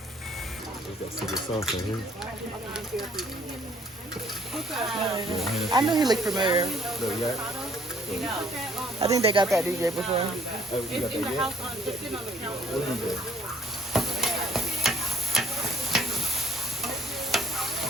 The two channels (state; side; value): normal; both; correlation 0.60